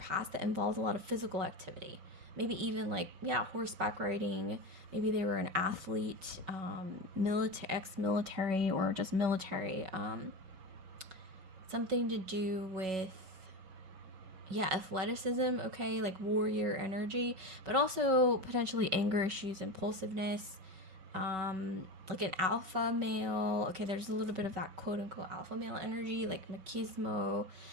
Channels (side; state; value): left; late; 5.3 ms